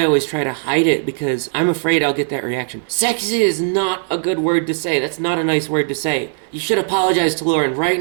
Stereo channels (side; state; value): left; silent; digital silence